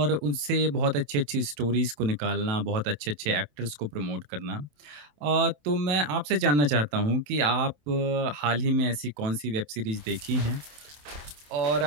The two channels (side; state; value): left; late; 27 ms